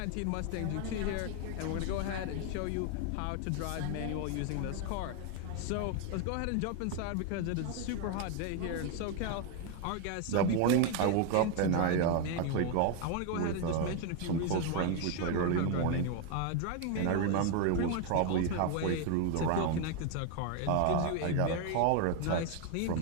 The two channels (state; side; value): different; both; correlation 0.01